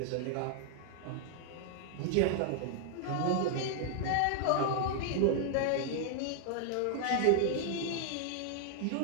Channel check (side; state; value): both; different; correlation 0.00